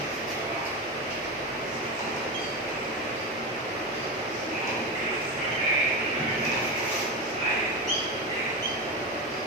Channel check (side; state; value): both; normal; correlation 0.18